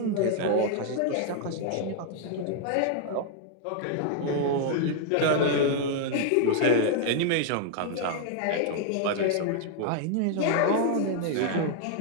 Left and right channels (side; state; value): both; different; correlation -0.01